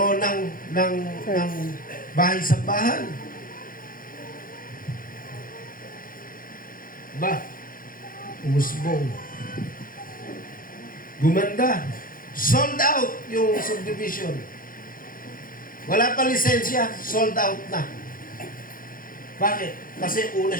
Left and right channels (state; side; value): late; right; 0.41 ms